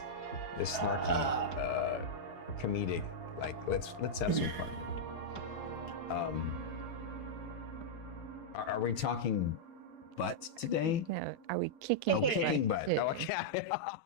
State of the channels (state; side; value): late; right; 4.8 ms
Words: snarky, comedic. Like, let's have some fun. Are we talking butt today? No, are we kicking? Oh, kicking butt. Yeah. Oh, okay. I